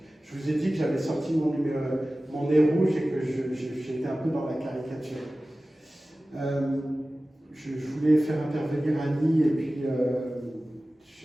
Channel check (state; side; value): normal; both; correlation 0.96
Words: je vous ai dit que j'avais sorti mon nez rouge et que j'étais un peu dans la caricature. Je voulais faire intervenir Annie et puis